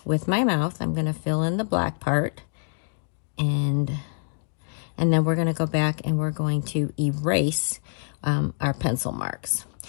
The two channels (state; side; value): silent; right; digital silence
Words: with my mouth. I'm going to fill in the black part, and then we're going to go back and we're going to erase our pencil marks.